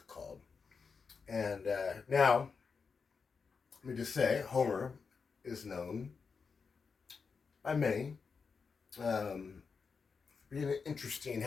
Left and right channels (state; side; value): quieter; right; 5.3 dB